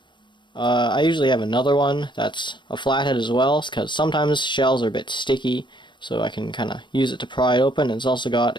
I usually have another one that's a flathead as well, because sometimes shells are a bit sticky, so I can kind of use it to pry it open. And it's also got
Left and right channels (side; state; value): right; late; 0.22 ms